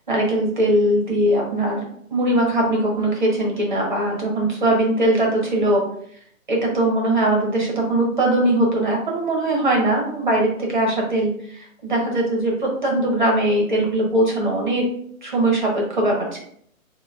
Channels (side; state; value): both; normal; correlation 0.16